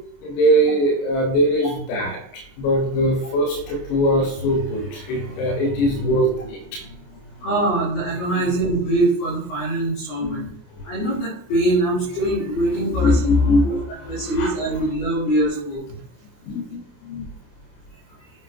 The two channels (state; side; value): late; right; 29 ms